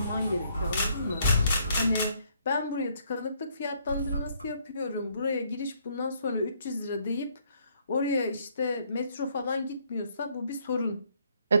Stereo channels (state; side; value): inverted; both; correlation -0.68